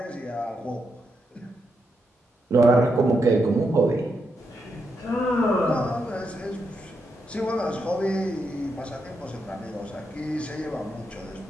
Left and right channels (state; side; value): normal; both; correlation 0.82